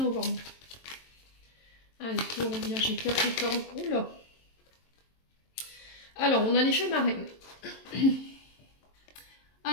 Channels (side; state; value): right; late; 22 ms